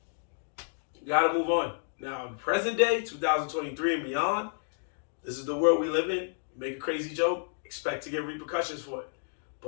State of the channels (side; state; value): right; silent; digital silence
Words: you gotta move on. Now, in present day, 2023 and beyond, this is the world we live in. You make a crazy joke, expect to get repercussions for it.